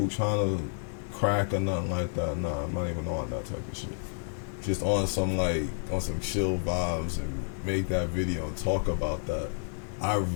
trying to crack or nothing like that. Nah, I'm not even on that type of shit. Just on some chill vibes and make that video and talk about that. I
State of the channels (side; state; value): right; silent; digital silence